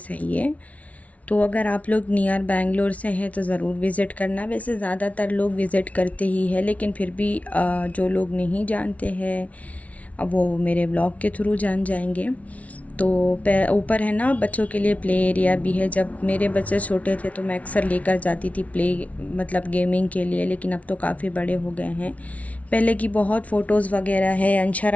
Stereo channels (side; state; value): right; late; 0.067 ms